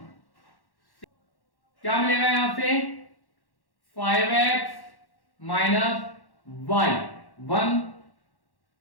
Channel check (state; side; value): late; right; 1.1 ms